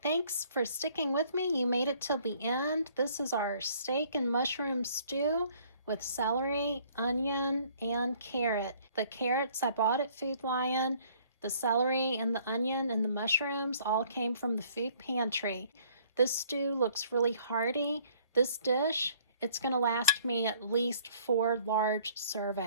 Thanks for sticking with me. You made it till the end. This is our steak and mushroom stew with celery, onion, and carrot. The carrots I bought at Food Lion. The celery and the onion and the mushrooms all came from the food pantry. This stew looks really hearty. This dish, it's going to last me at least 4 large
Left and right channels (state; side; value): inverted; both; correlation -0.59